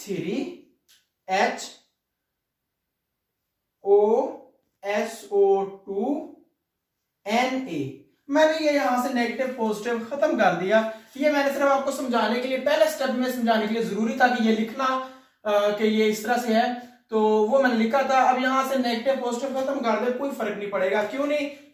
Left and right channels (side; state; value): both; identical; correlation 1.00